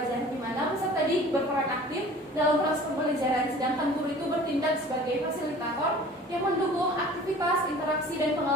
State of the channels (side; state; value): both; normal; correlation 0.45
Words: di mana peserta didik berperan aktif dalam proses pembelajaran, sedangkan guru itu bertindak sebagai fasilitator yang mendukung aktivitas, interaksi, dan